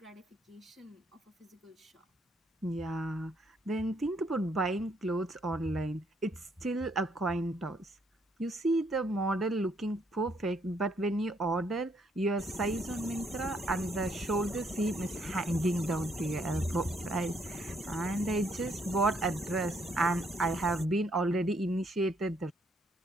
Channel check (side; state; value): both; normal; correlation 0.70